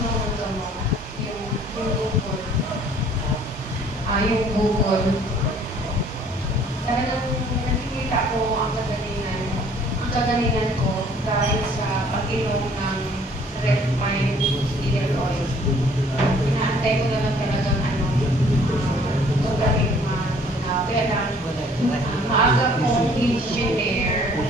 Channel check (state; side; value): normal; both; correlation 0.57